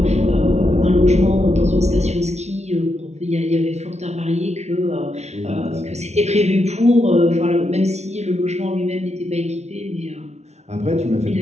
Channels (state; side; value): late; left; 0.32 ms